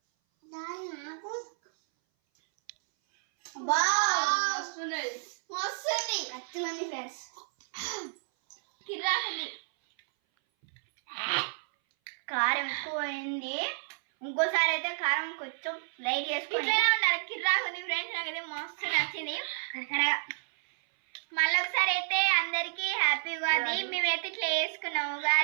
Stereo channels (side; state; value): left; silent; 57 dB below the other